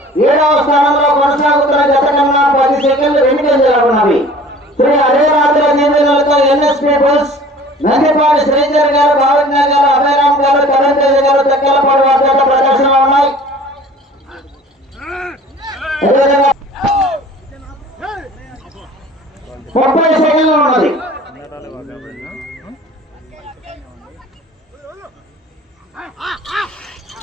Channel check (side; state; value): both; normal; correlation 0.47